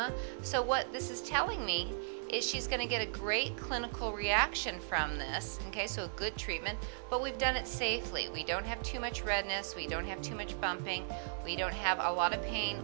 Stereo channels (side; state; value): left; silent; 53 dB below the other